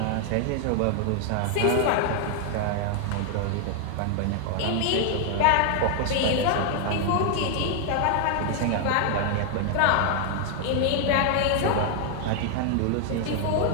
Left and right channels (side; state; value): both; different; correlation 0.00